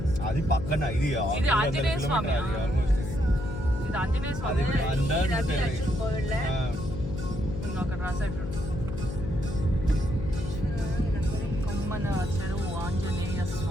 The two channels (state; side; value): noise; left; hum, 6 dB below the sound